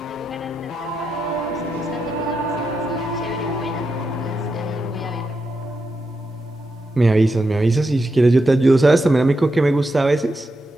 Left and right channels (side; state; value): both; normal; correlation 0.86